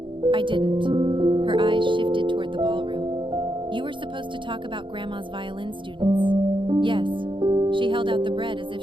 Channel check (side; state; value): left; late; 0.24 ms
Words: I didn't. Her eyes shifted toward the ballroom. You were supposed to talk about Grandma's violin students. Yes. She held out the bread as if